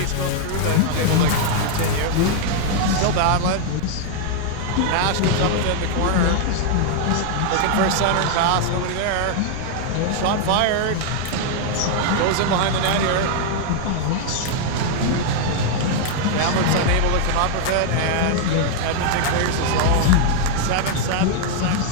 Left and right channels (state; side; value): different; both; correlation 0.00